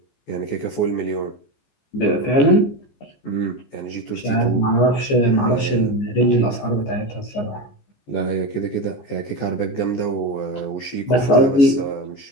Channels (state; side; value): late; right; 14 ms